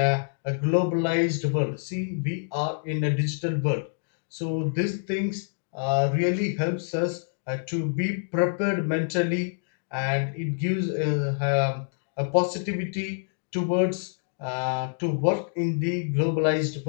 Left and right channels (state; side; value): silent; right; digital silence